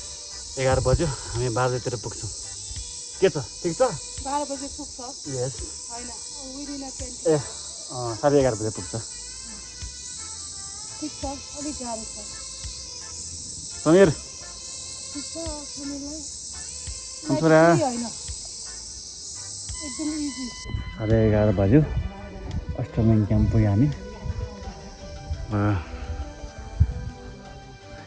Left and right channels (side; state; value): both; identical; correlation 1.00